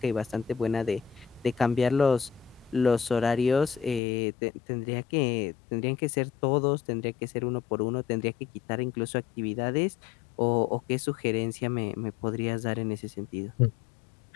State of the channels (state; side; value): drops out; right; at 4.0 s